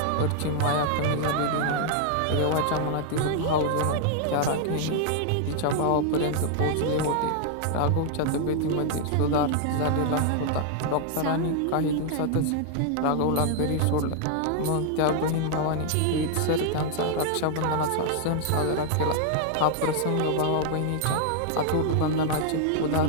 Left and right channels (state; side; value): different; both; correlation 0.00